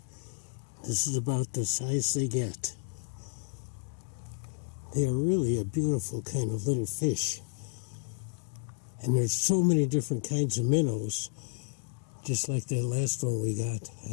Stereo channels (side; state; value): right; silent; 57 dB below the other